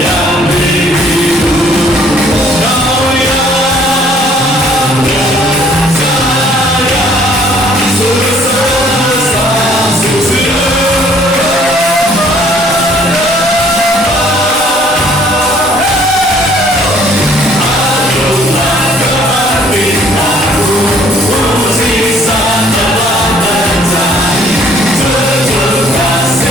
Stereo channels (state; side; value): normal; both; correlation 0.60